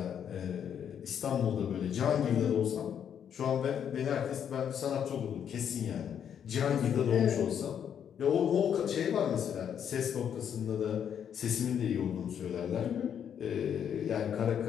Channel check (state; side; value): quieter; right; 8.6 dB